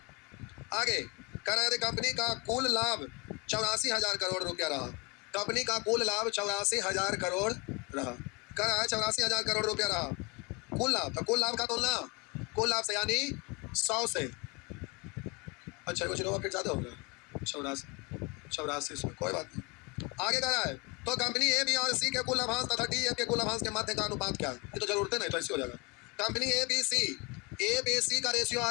आगे कह रहा यदि कंपनी का कुल लाभ 84,000 करोड़ रुपया रहा, कंपनी का कुल लाभ 84,000 करोड़ रहा, कह रहा है 84,000 करोड़ रुपया रहा कुल लाभ, तो कुल लाभ का तुलना कुल लाभ से यानी 100 से, अच्छा वो जीरो फिर ज्यादा होगा, 84 से, कोई बात नहीं। आगे कह रहा है तो कंपनी ए बी और सी के कुल लाभांश तथा डी एफ के कुल लाभांश के मध्य का अनुपात क्या है, ये तो जरूरत नहीं तो ऐसे हो जाएगा। कंपनी ए बी सी का रेशियो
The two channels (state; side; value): quieter; right; 28.5 dB